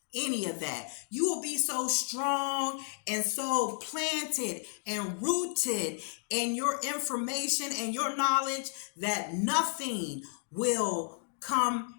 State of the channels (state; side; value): silent; right; digital silence